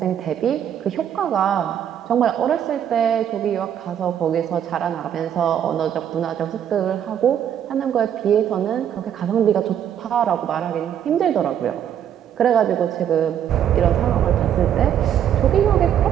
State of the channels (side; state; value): left; quieter; 9.6 dB